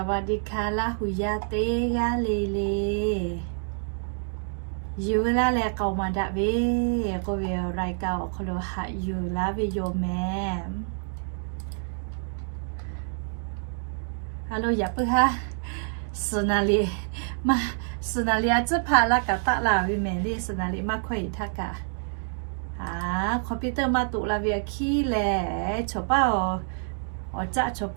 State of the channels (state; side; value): silent; left; digital silence